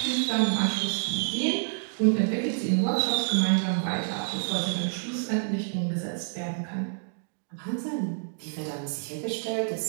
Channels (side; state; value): left; silent; digital silence